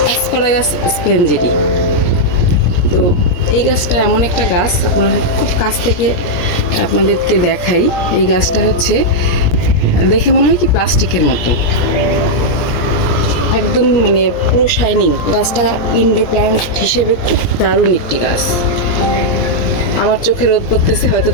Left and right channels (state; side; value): late; right; 17 ms